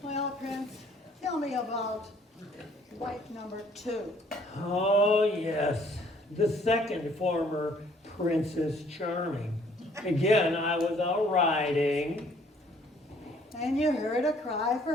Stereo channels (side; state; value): both; normal; correlation 0.60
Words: Well, Prince, tell me about wife number 2. Oh, yes. The second former Princess Charming. Again, I was out riding. And you heard a cry